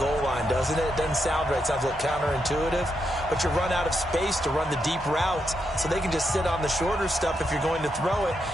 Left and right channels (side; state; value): both; normal; correlation 0.82